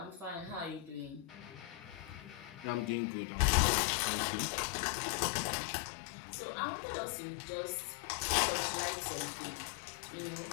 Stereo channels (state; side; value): drops out; right; at 3.0 s